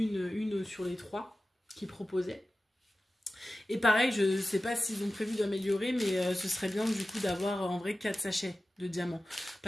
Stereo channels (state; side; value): normal; both; correlation 0.95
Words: sur les 3 qu'ils proposaient. Et pareil, je sais pas s'ils ont prévu d'améliorer, mais ce serait bien du coup d'avoir en vrai 4 sachets de diamants.